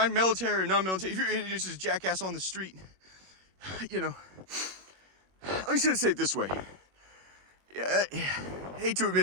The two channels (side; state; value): left; late; 21 ms